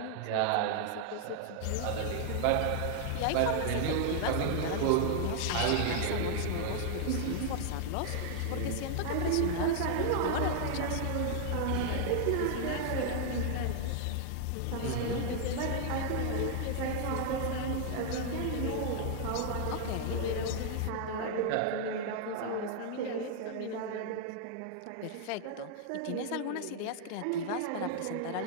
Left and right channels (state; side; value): different; both; correlation 0.00